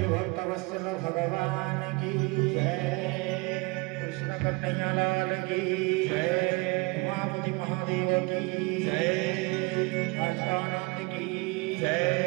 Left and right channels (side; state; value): left; quieter; 26.8 dB